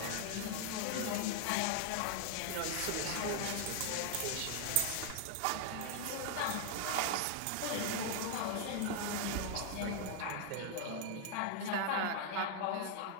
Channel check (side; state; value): both; different; correlation 0.00